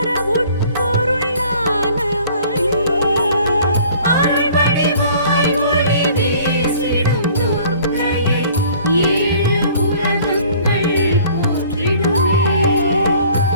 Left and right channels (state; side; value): inverted; both; correlation -0.53